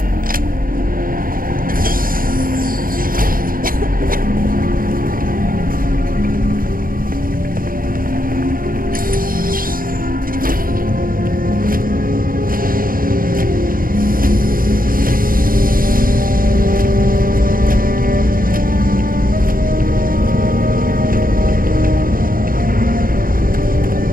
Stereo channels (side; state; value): left; late; 0.41 ms